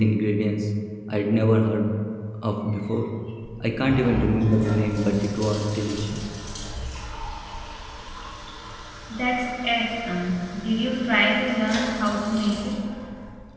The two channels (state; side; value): identical; both; correlation 1.00